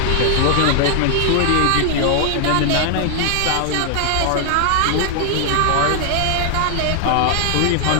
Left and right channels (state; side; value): different; both; correlation 0.00